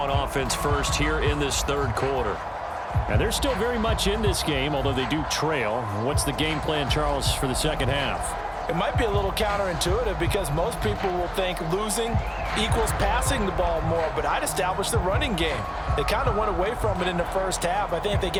offense first here in this third quarter. And they're still very much in this game, although they do trail. What's the game plan, Charles, for the second half? It might be a little counterintuitive because most people will think losing equals passing the ball more, but I'd establish the running game. They kind of went away from it in the first half. I think if they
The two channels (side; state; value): both; identical; correlation 1.00